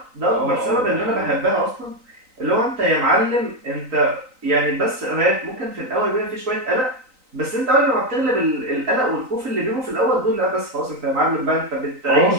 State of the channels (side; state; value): left; late; 3.9 ms